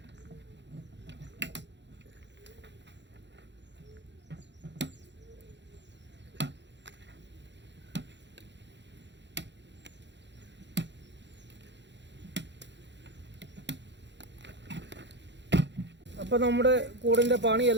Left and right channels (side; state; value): left; late; 0.52 ms